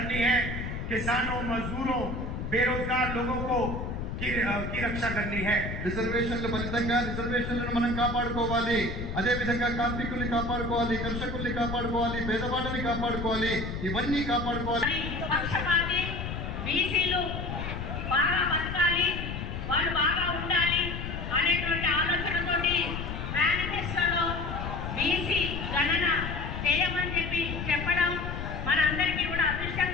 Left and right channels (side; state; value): left; noise; rumble, 5 dB below the sound